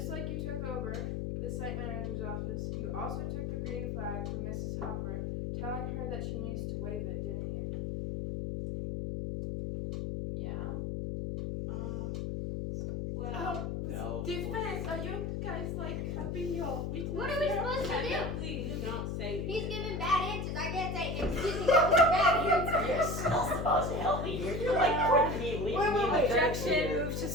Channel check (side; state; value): left; noise; hum, 2 dB below the sound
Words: like you took over the site manager's office, you also took the green flag from Mrs. Hopper, telling her that she needs to wave it, didn't you? Yeah? Well, Defense, are you guys like having your witness? What are we supposed to do? technically you don't say He's giving bad answers. I can't say, excuse me, that was a bad answer. You're still supposed to help me here. You're like putting me, leaving me in the dirt Objection, here. move to